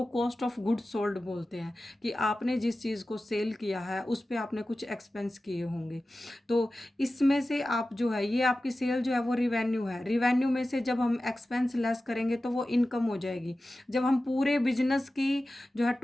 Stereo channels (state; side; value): normal; both; correlation 0.95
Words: कॉस्ट ऑफ गुड्स सोल्ड बोलते हैं। कि आपने जिस चीज़ को सेल किया है उस पर आपने कुछ एक्सपेंस किए होंगे। तो इसमें से आप जो है, ये आपकी सेल जो है वो रिवेन्यू है, रिवेन्यू में से जब हम एक्सपेंस लेस करेंगे तो वो इनकम हो जाएगी। जब हम पूरे बिजनेस की जो है